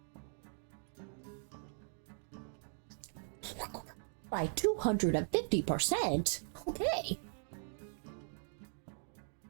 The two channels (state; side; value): silent; left; 51 dB below the other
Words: By 250%? Okay.